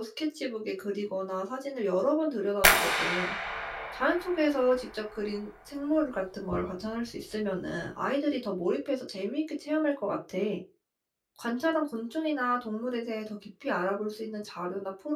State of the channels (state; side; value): identical; both; correlation 1.00